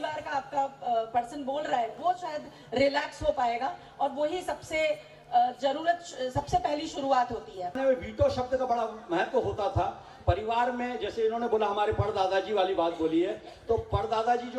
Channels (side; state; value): both; identical; correlation 1.00